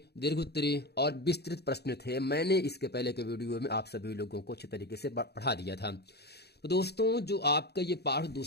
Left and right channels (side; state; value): right; late; 0.48 ms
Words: दीर्घोत्तरी और विस्तृत प्रश्न थे, मैंने इसके पहले के वीडियो में आप सभी लोगों को अच्छे तरीके से पढ़ा दिया था। तो दोस्तों, जो आपका ये पाठ